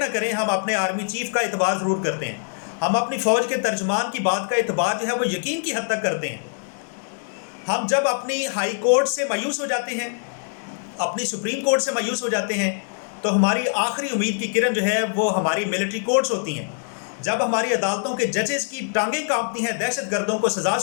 کریں، ہم اپنے آرمی چیف کا اعتبار ضرور کرتے ہیں. ہم اپنی فوج کے ترجمان کی بات کا اعتبار جو ہے وہ یقین کی حد تک کرتے ہیں. ہم جب اپنی ہائی کورٹ سے مایوس ہو جاتے ہیں، اپنی سپریم کورٹ سے مایوس ہو جاتے ہیں، تو ہماری آخری امید کی کرن جو ہے وہ ہماری ملٹری کورٹس ہوتی ہیں. جب ہماری عدالتوں کے ججز کی ٹانگیں کانپتی ہیں دہشت گردوں کو سزا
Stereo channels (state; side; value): silent; right; digital silence